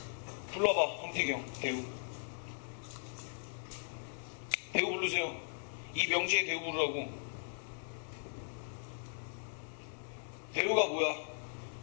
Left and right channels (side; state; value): right; silent; digital silence